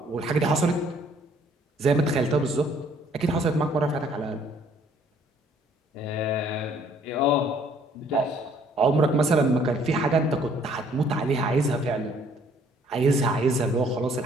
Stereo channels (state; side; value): normal; both; correlation 0.61